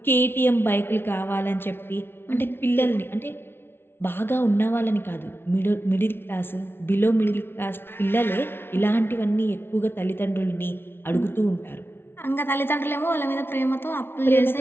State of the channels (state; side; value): late; right; 0.11 ms